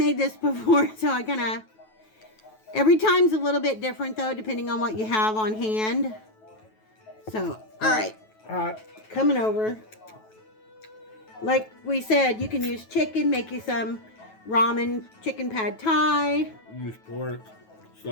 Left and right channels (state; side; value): late; right; 9.2 ms